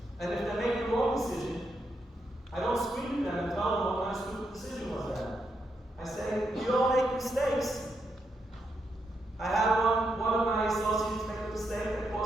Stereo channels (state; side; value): normal; both; correlation 0.81